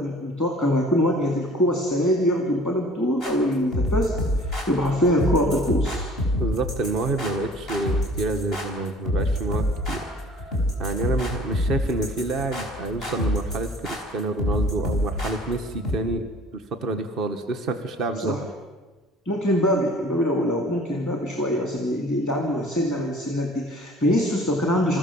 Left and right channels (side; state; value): both; normal; correlation 0.49